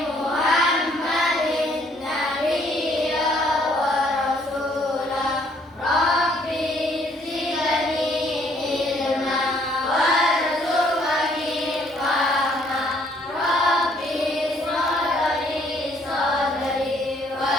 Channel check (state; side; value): normal; both; correlation 0.65